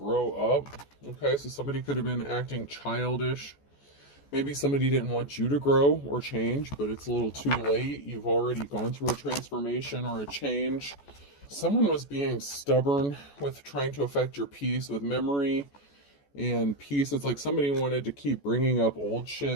up. Okay, so somebody could have been acting childish. Maybe somebody didn't want you to grow or change, but it's a little too late. You've already gone through a transformation or a change. Someone was being stubborn with trying to affect your peace with memory and peace. It's like somebody wanted to keep bringing up old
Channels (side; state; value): right; late; 14 ms